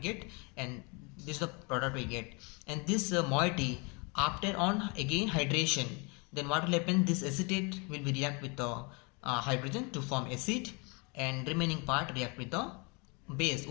and this is the product we get. And this moiety, after on again hydration, then what will happen? This acetate will be react with the hydrogen to form acid, and remaining part react with the base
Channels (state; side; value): quieter; right; 31.3 dB